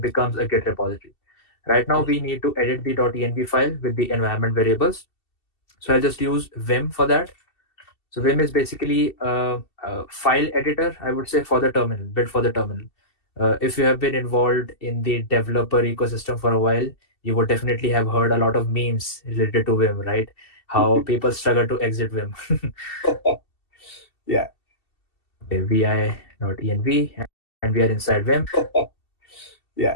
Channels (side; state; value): right; late; 2.7 ms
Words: a Git repository. Right now we need to edit the .env file with the environment variables. So I'll just use Vim for that. So Vim is basically a file editor, I would say, for the terminal, built for the terminal. If you have been involved in the developer ecosystem for a while, you would definitely have heard a lot of memes related to Vim, right? How people struggle to exit Vim. Yeah. Okay, vi.env, and we are inside Vim.